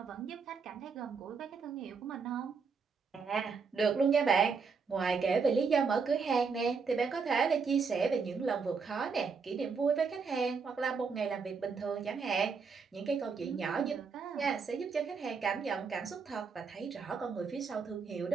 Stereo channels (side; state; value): left; quieter; 5.3 dB